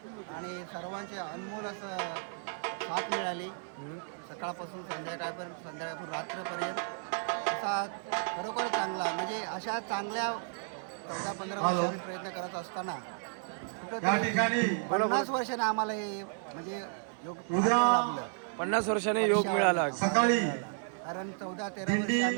आणि सर्वांची अनमोल असं साथ मिळाली. सकाळपासून संध्याकाळपासून रात्रपर्यंत असा खरोखर चांगला, म्हणजे अशा चांगल्या 14-15 वर्षांनी प्रयत्न करत असताना कुठं 50 वर्षाने आम्हाला हे म्हणजे योग लाभलं. 50 वर्षाने योग मिळाला. कारण 14-13 वर्ष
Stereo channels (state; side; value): silent; left; digital silence